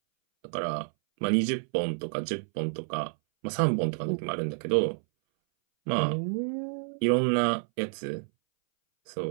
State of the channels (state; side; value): silent; left; 59 dB below the other